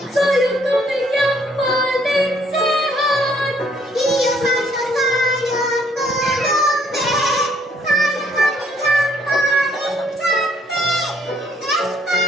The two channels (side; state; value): both; normal; correlation 0.66